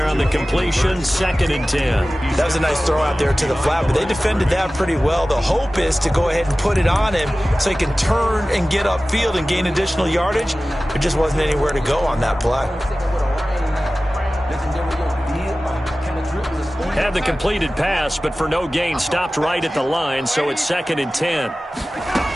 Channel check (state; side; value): normal; both; correlation 0.96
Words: on the completion. 2nd and 10. That was a nice throw out there to the flat, but they defended that pretty well. The hope is to go ahead and put it on him so he can turn and get upfield and gain additional yardage. There just wasn't anywhere to go on that play. Had the completed pass, but for no gain, stopped right at the line, so it's 2nd and 10.